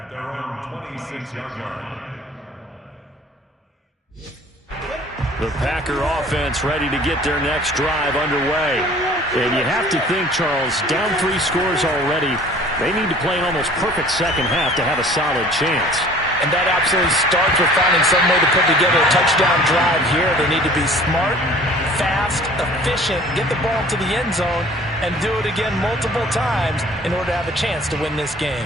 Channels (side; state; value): both; normal; correlation 0.49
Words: their own 26-yard line. The Packer offense ready to get their next drive underway. And you have to think, Charles, down 3 scores already. They need to play an almost perfect second half to have a solid chance. And that absolutely starts with finding some way to put together a touchdown drive here. They need to be smart, fast, efficient, get the ball to the end zone, and do it again multiple times in order to have a chance to win this